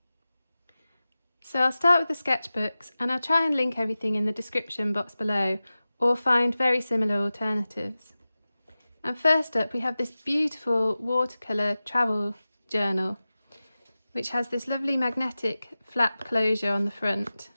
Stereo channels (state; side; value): inverted; both; correlation -0.96